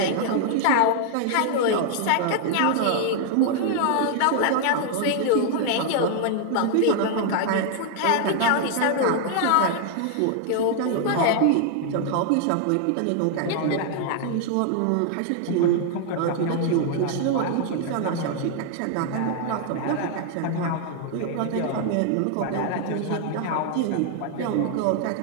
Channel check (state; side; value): different; both; correlation 0.00